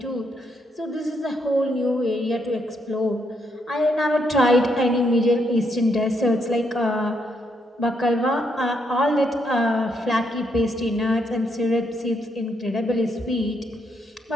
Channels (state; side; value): normal; both; correlation 0.76